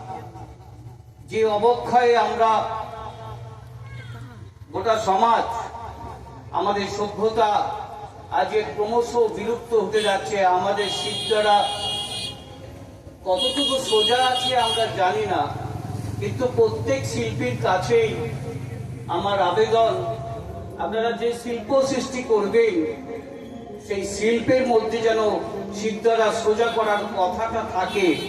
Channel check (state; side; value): identical; both; correlation 1.00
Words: যে অবক্ষয়ে আমরা গোটা সমাজ, আমাদের সভ্যতা আজকে ক্রমশ বিলুপ্ত হতে যাচ্ছে। আমাদের শিল্পীরা কতটুকু সোজা আছে আমরা জানি না, কিন্তু প্রত্যেক শিল্পীর কাছেই আমার আবেদন, আপনারা যে শিল্প সৃষ্টি করবেন সেই শিল্পের মধ্যে যেন শিল্পীরা সোজা করার কথাটা থাকে।